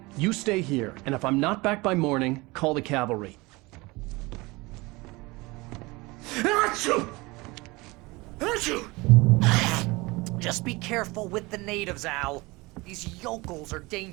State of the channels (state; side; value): quieter; left; 23.3 dB